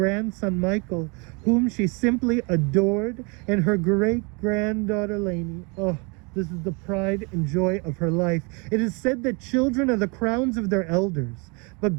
Michael, whom she simply adored, and her great-granddaughter Lainey. Oh, this is the pride and joy of her life. It is said that children are the crowns of their elders, but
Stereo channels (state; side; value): quieter; left; 31.3 dB